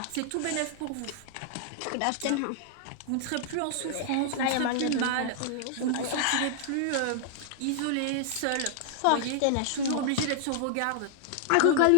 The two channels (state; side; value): different; both; correlation -0.01